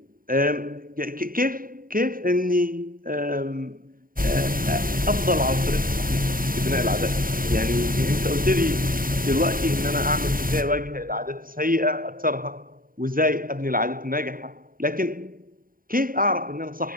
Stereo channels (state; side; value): late; left; 0.41 ms